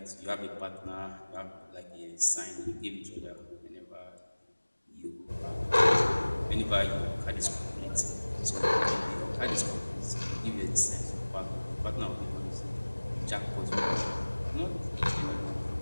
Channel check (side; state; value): both; inverted; correlation -1.00